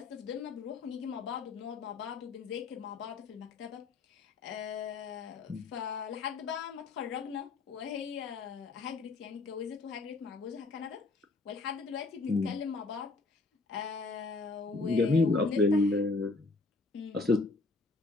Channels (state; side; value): quieter; right; 3.5 dB